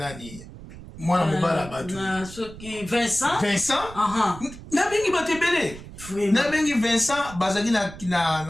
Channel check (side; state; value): right; noise; rumble, 15 dB below the sound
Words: mwana mobala batu na soki Vincent na bengi batebele na bengi Vincent bazaki